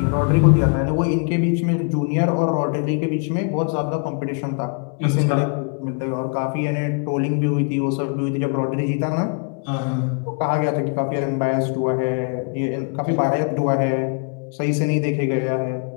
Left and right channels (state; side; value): quieter; right; 40.0 dB